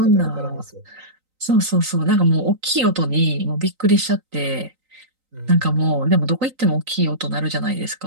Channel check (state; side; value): late; left; 3.9 ms